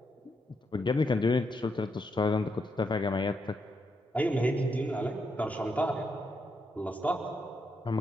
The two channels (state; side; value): normal; both; correlation 0.80